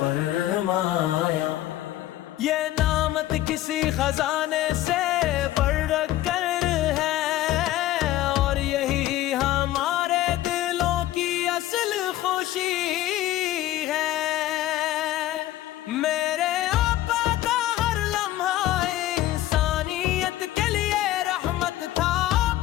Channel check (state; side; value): quieter; right; 14.7 dB